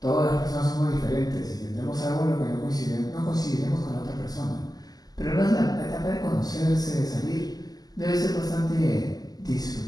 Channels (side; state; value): right; late; 0.18 ms